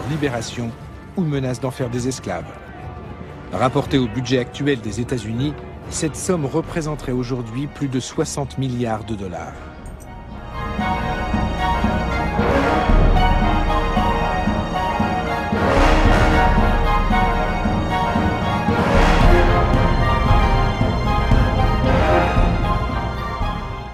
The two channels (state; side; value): identical; both; correlation 1.00